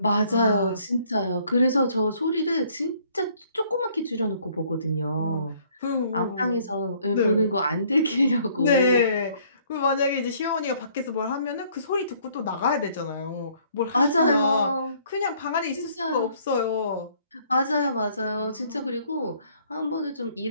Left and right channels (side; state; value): both; inverted; correlation -0.61